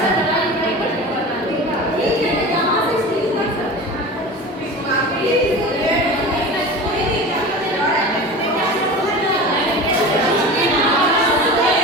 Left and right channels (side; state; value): both; normal; correlation 0.33